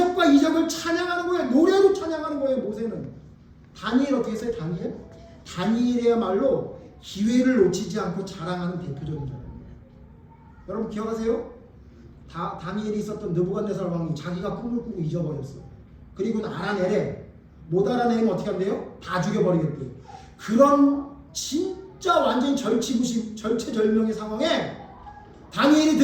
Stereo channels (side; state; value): both; identical; correlation 1.00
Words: 이적을 찬양하는 거예요. 노래로 찬양하는 거예요. 모세는. 다니엘 어떻게 했어요? 다니엘이야말로 기회를 놓치지 않고 자랑하는 대표적인 사람이에요. 여러분 기억하세요? 다니엘이 있었던 느부갓네살 왕이 자기가 꿈을 꾸고 잊어버렸어. 그리고 알아내래. 못 알아내면 어떻게 한대요? 다 죽여버리겠대요. 그런 진짜 완전히 절체절명의 상황에 다니엘이